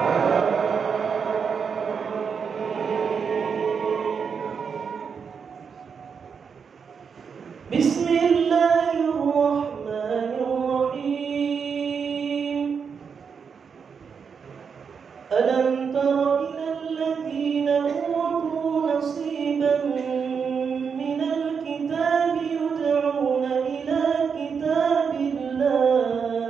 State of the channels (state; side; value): quieter; left; 6.3 dB